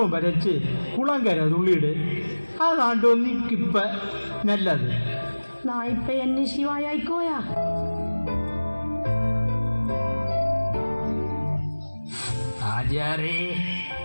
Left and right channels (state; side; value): inverted; both; correlation -1.00